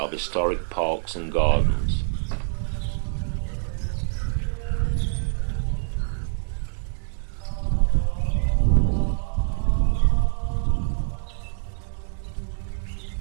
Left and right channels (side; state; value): left; silent; digital silence